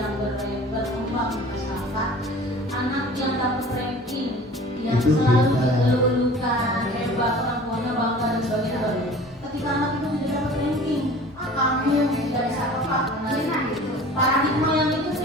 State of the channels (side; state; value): both; normal; correlation 0.44